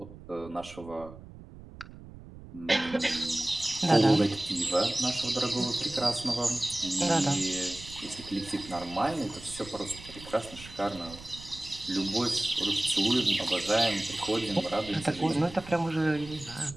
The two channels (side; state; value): right; noise; rumble, 17 dB below the sound